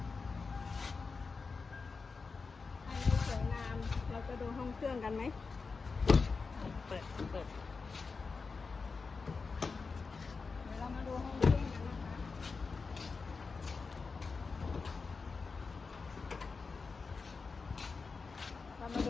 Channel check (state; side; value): quieter; right; 4.6 dB